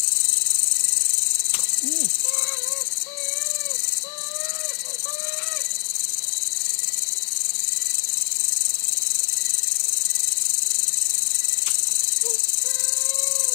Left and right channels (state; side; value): silent; right; digital silence